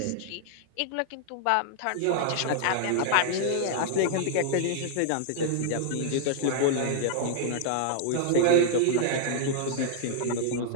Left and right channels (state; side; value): different; both; correlation -0.01